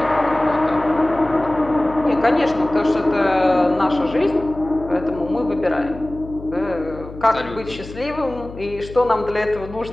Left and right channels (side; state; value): left; noise; hum, 14 dB below the sound